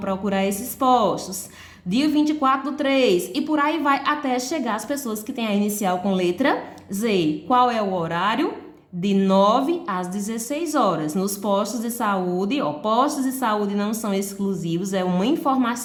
esses postos. Dia 24/3 e por aí vai até chegar as pessoas que têm a inicial com letra Z. Qual é o horário? De 9 às 16 horas. Nos postos de saúde, postos de saúde não são exclusivos, é uma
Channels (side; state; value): both; identical; correlation 1.00